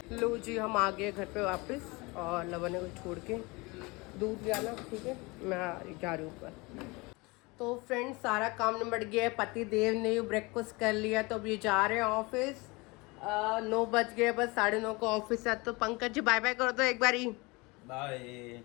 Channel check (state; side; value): quieter; right; 25.3 dB